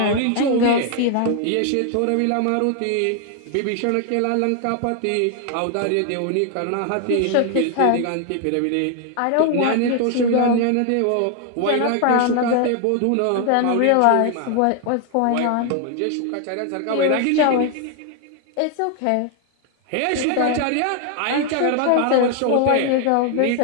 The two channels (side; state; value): both; different; correlation 0.00